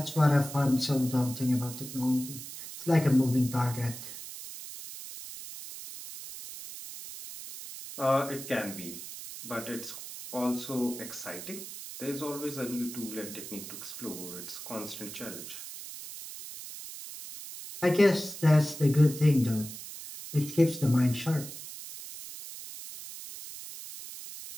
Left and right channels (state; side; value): noise; right; hiss, 11 dB below the sound